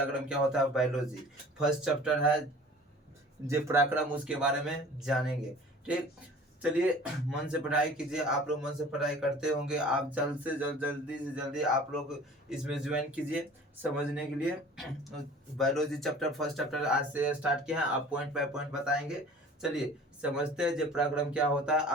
क्या होता है। बायोलॉजी फर्स्ट चैप्टर है जे पराक्रम, उसके बारे में जानेंगे। ठीक, चलिए मन से पढ़ाई कीजिए। आप लोग मन से पढ़ाई करते होंगे, आप जल्द से जल्द जल्दी से जल्दी आप लोग इसमें ज्वाइन कीजिए समझने के लिए। बायोलॉजी चैप्टर फर्स्ट चैप्टर आज से स्टार्ट किया है, आप पॉइंट बाय पॉइंट बताएंगे। चलिए समझते हैं जे पराक्रम क्या होता है,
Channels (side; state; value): both; normal; correlation 0.46